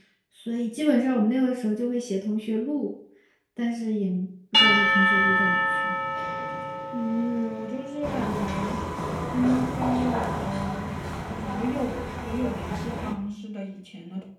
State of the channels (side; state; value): both; identical; correlation 1.00